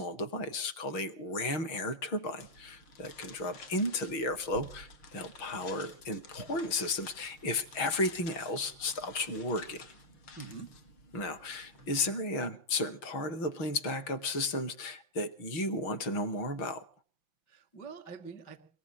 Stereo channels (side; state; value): right; late; 5.9 ms